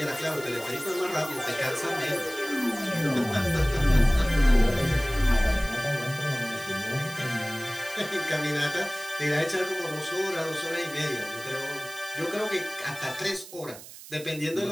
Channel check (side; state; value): right; noise; hiss, 16 dB below the sound